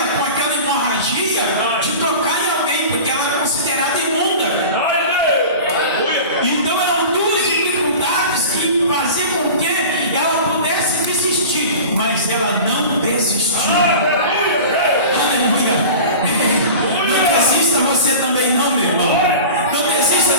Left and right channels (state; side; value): inverted; both; correlation -0.36